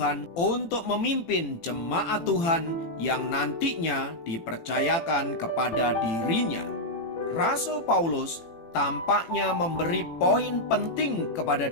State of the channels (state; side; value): late; right; 18 ms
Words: untuk memimpin jemaat Tuhan yang nantinya dipercayakan kepada dirinya. Rasul Paulus tampaknya memberi poin penting kepada